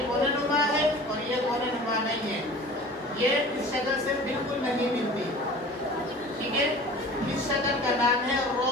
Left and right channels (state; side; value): normal; both; correlation 0.41